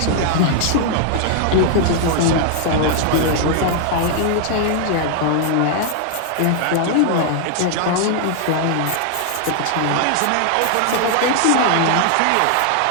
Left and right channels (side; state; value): both; different; correlation 0.00